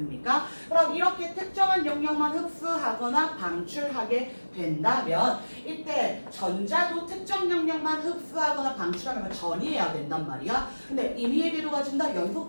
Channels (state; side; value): inverted; both; correlation -1.00